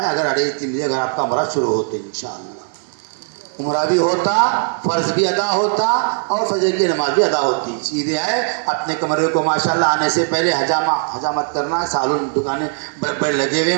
ہے. اگر 3:30 بجے اگر آپ کا عمرہ شروع ہوتے انشاءاللہ, عمرہ بھی ہوتا, فرض بھی ادا ہوتا, اور فجر کی نماز بھی ادا ہوتی. سیدھے آئے اپنے کمرے کو ماشاءاللہ آنے سے پہلے حجامت کرنا ہے. سالون دکانیں بڑے لگے ہوئے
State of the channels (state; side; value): silent; left; digital silence